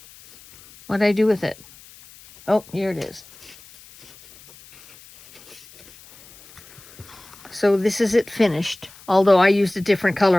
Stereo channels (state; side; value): noise; left; hiss, 23 dB below the sound